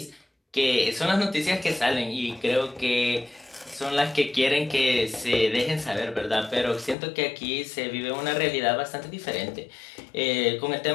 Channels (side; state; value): right; drops out; at 7.0 s